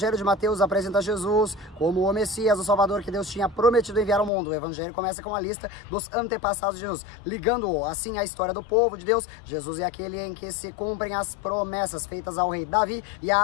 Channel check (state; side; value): drops out; right; at 4.3 s